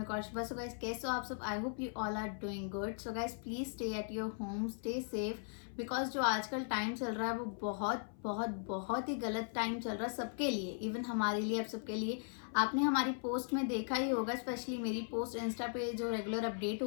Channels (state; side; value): silent; right; 52 dB below the other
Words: Kaushika. So guys, कैसे हो आप सब? I hope you all are doing good. So guys, please stay at your home, stay safe, because जो आजकल time चल रहा है वो बहुत बहुत बहुत ही गलत टाइम चल रहा है सबके लिए, इवन हमारे लिए, अब सबके लिए। आपने हमारी पोस्ट में देखा ही होगा, स्पेशली मेरी पोस्ट इंस्टा पे जो रेगुलर अपडेट